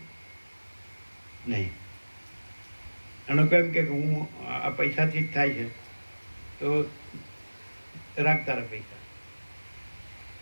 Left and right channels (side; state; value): both; inverted; correlation -1.00